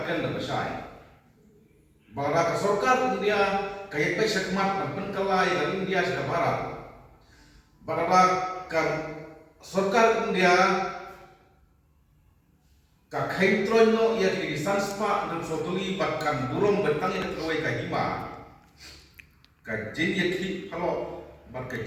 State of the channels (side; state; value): both; identical; correlation 1.00